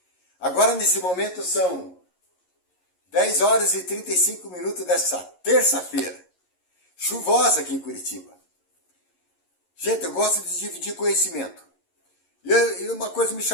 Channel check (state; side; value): late; right; 11 ms